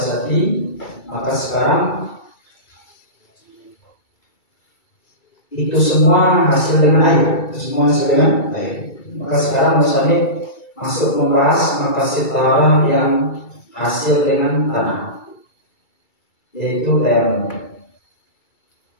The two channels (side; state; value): right; late; 2.3 ms